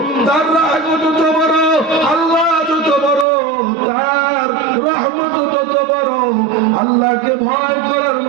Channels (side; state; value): left; drops out; at 3.2 s